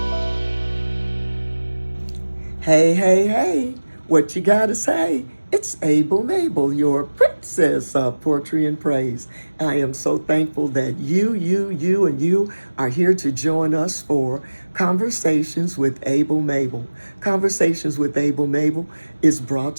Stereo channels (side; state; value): both; inverted; correlation -1.00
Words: hey, hey, what you gotta say? It's Mable, your princess of poetry and praise. I am so thankful that you are here to join us for Conversations with Mable. Conversations with Mable is brought